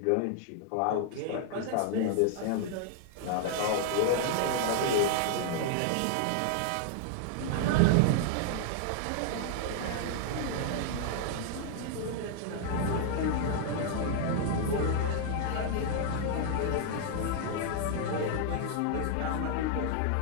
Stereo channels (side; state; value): both; different; correlation 0.00